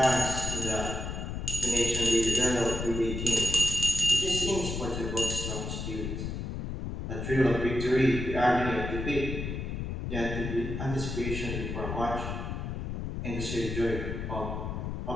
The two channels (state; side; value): noise; left; rumble, 4 dB below the sound